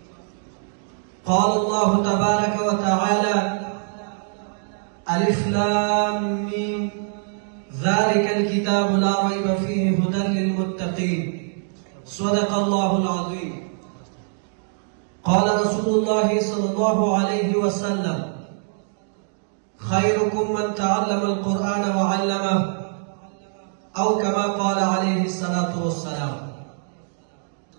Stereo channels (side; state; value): left; silent; digital silence